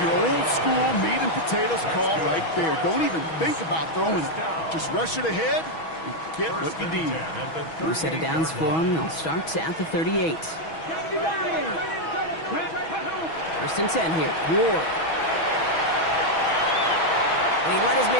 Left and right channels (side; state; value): right; late; 6.2 ms